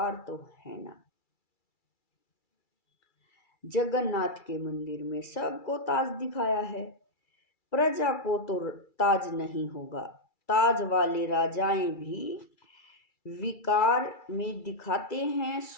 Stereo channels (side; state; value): right; late; 2.3 ms